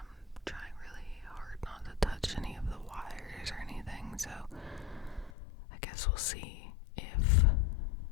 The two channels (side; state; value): right; drops out; at 5.3 s